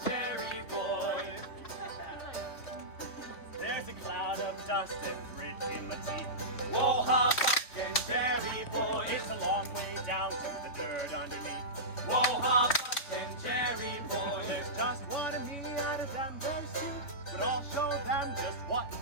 Jerry Boy. There's a cloud of dust and grit in my teeth. Whoa, how Buck and Jerry Boy. It's a long way down to the dirt underneath. Whoa, how Buck and Jerry Boy. There's just one of me out of them, there's two. But I'll show them just what to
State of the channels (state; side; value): late; right; 3.7 ms